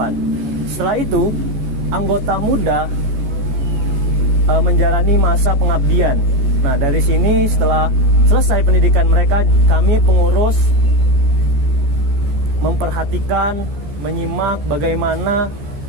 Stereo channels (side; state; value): left; late; 14 ms